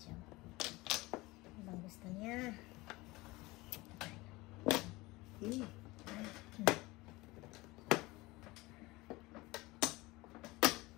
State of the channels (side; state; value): right; quieter; 21.5 dB